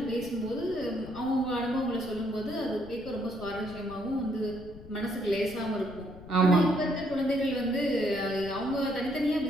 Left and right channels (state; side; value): noise; left; rumble, 17 dB below the sound